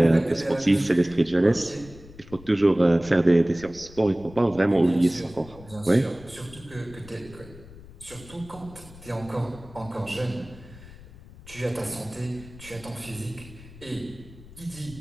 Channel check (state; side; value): noise; left; rumble, 19 dB below the sound